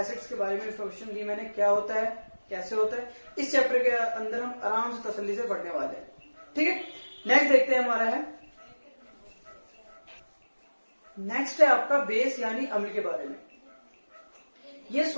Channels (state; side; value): inverted; both; correlation -1.00